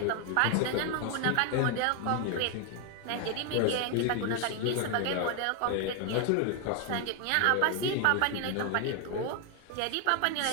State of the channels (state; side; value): different; both; correlation 0.01